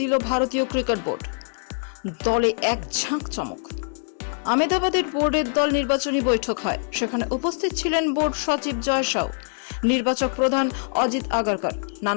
ভারতীয় ক্রিকেট বোর্ড। দলে এক ঝাঁক চমক। আহমেদাবাদের বোর্ডের দল নির্বাচনী বৈঠক হয়। সেখানে উপস্থিত ছিলেন বোর্ড সচিব জয় শাহ, নির্বাচক প্রধান অজিত আগারকর।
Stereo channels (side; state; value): right; silent; digital silence